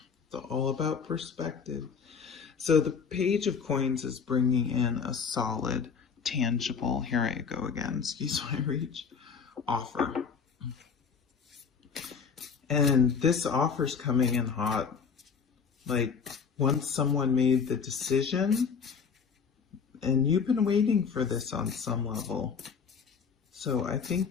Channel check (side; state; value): right; quieter; 6.0 dB